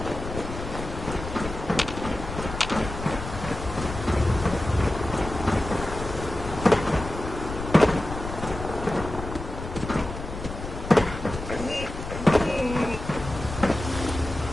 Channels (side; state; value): left; noise; rumble, 8 dB below the sound